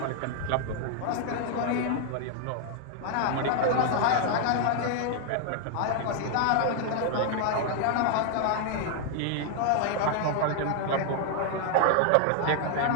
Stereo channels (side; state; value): both; different; correlation 0.00